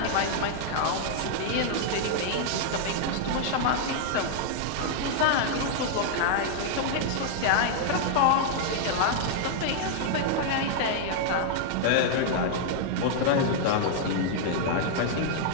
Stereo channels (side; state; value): both; different; correlation -0.01